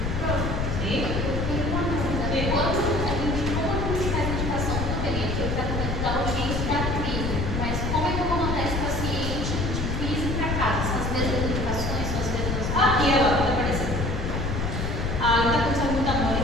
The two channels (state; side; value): noise; left; rumble, 1 dB below the sound